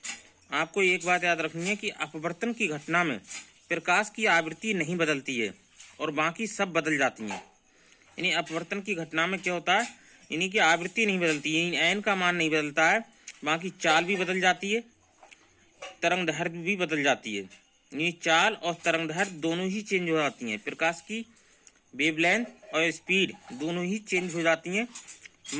आपको एक बात याद रखनी है कि अपवर्तन की घटना में प्रकाश की आवृत्ति नहीं बदलती है और बाकी सब बदल जाती हैं। यानी अपवर्तन की घटना में क्या होता है, यानी कि आवृत्ति नहीं बदलती, यानी एन का मान नहीं बदलता है, बाकी चाल भी बदल जाती है, तरंग दैर्घ्य भी बदल जाती है। यानी चाल और तरंग दैर्घ्य दोनों ही चेंज हो जाती हैं। प्रकाश की वेवलेंथ और स्पीड दोनों ही चेंज हो जाती हैं,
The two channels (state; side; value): identical; both; correlation 1.00